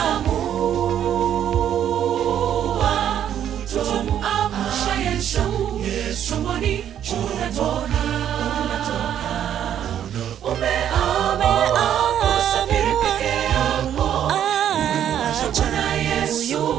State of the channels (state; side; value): quieter; left; 10.1 dB